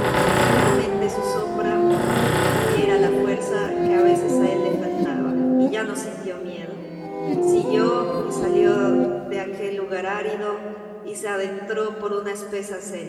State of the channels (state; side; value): identical; both; correlation 1.00